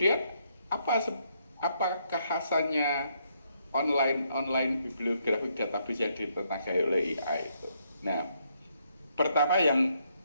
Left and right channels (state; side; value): inverted; both; correlation -0.74